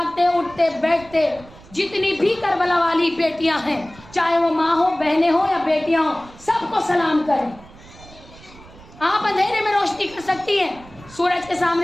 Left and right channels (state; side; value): noise; right; rumble, 21 dB below the sound